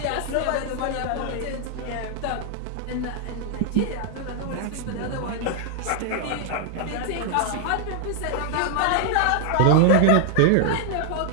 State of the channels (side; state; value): both; different; correlation 0.00